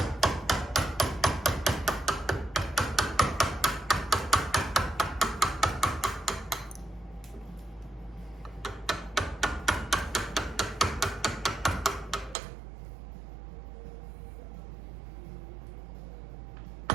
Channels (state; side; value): drops out; left; at 12.4 s